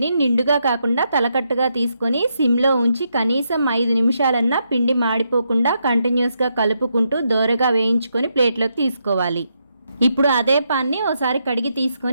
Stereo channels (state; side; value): inverted; both; correlation -0.80